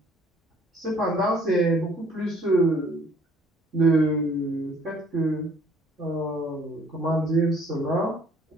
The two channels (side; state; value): both; normal; correlation 0.58